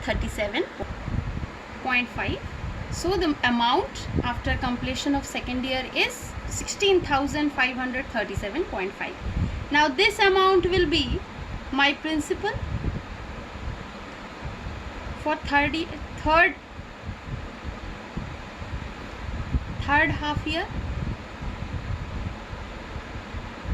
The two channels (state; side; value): identical; both; correlation 1.00